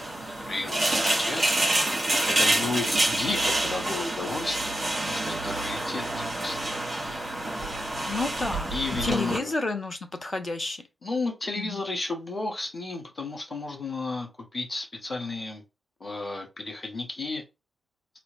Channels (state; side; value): normal; both; correlation 0.87